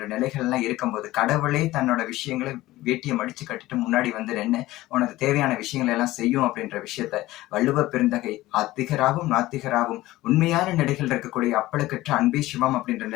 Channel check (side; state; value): right; quieter; 17.2 dB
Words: நிலைகள்லாம் இருக்கும்போது கடவுளே தன்னோட விஷயங்களை வேட்டியை மடிச்சு கட்டிட்டு முன்னாடி நின்று உனக்கு தேவையான விஷயங்களை எல்லாம் செய்யும் அப்படின்ற விஷயத்த வள்ளுவ பெருந்தகை ஆத்திகராகவும் நாத்திகராகவும் உண்மையான நிலைகள் இருக்கக்கூடிய அப்பழுக்கற்ற அன்பே சிவம் அப்படின்ற